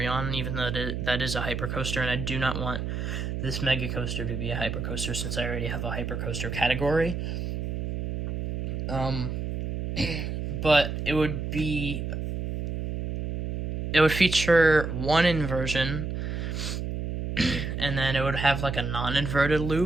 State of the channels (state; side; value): noise; right; hum, 3 dB below the sound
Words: even though that is a hypercoaster, and I do not want this Mega Coaster to be a hypercoaster since I already have a hypercoaster category. But it would feature 1 inversion, and then it would have like a non-inverted